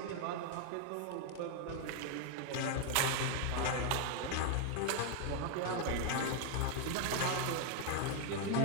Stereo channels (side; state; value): both; different; correlation 0.00